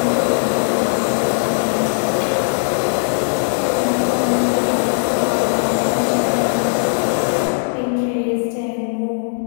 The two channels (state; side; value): silent; right; digital silence